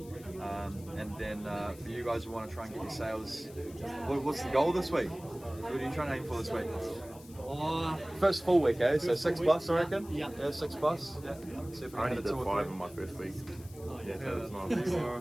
And then for you guys who want to try and get your sales, what's the goal this week? What are you trying to aim for this week? First full week, eh? So 6+, I reckon? Yeah. Yeah, 6+. Yeah. See if I can only hit did 2 or 5 3. in my first week. Yeah, so it's not.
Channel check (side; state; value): left; noise; hiss, 21 dB below the sound